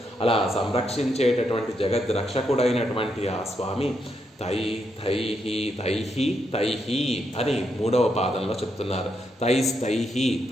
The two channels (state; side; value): normal; both; correlation 0.80